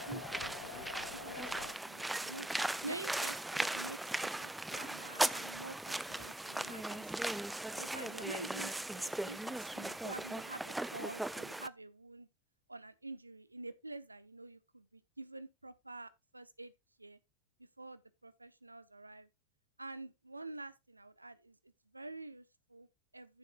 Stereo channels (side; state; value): both; normal; correlation 0.67